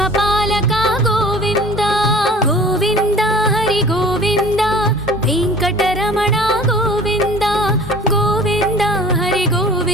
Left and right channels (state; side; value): normal; both; correlation 0.45